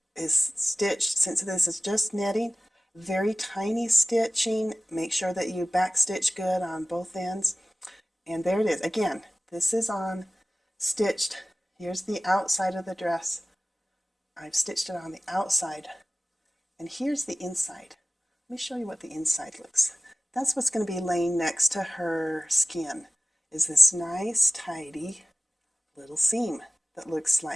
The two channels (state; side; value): normal; both; correlation 0.96